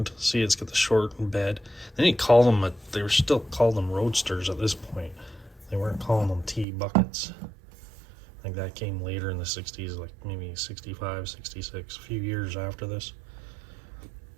See, it's got the shortened bed. Then you call them they were still called them roadsters at this point. They weren't calling them T buckets. I think that came later in the 60s, like maybe 65, 66, a few years after this.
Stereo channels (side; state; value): left; drops out; at 6.7 s